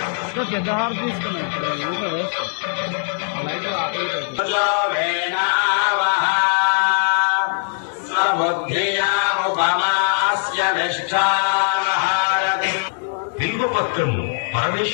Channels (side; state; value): right; silent; 65 dB below the other